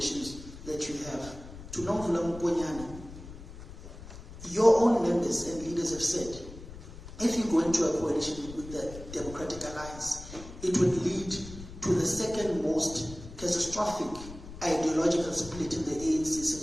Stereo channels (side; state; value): left; noise; rumble, 14 dB below the sound